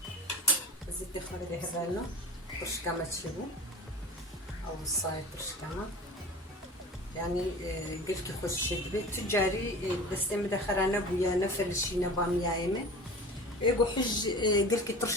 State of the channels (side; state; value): both; normal; correlation 0.37